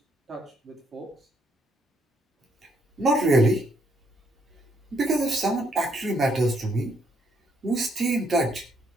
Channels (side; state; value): both; normal; correlation 0.72